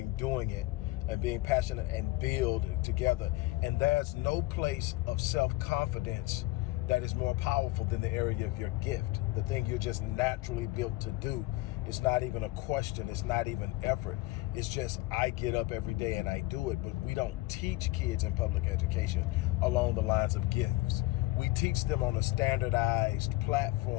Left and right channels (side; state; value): right; quieter; 18.9 dB